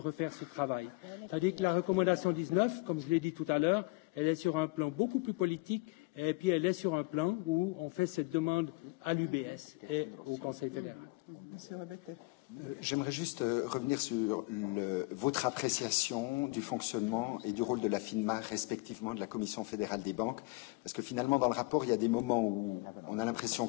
ce travail. Tandis que la recommandation 19, comme je l'ai dit tout à l'heure, elle est sur un plan beaucoup plus politique et puis elle est sur un plan où on fait cette demande à l'UBS et au Conseil fédéral. Monsieur Rebete. J'aimerais juste revenir sur votre appréciation du fonctionnement et du rôle de la FINMA, respectivement de la Commission fédérale des banques, parce que finalement, dans le rapport, il y a des moments où on a l'impression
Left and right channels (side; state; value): right; quieter; 26.3 dB